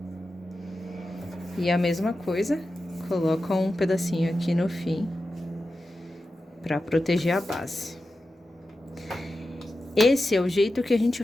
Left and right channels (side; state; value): both; normal; correlation 0.92